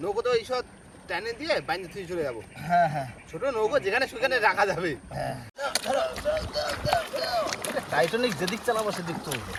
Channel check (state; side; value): identical; both; correlation 1.00